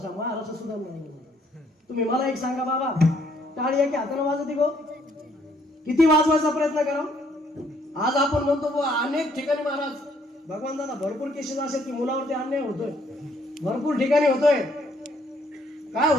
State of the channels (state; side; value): normal; both; correlation 0.67